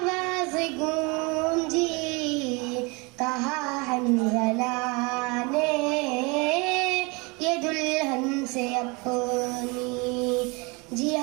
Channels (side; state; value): left; quieter; 27.9 dB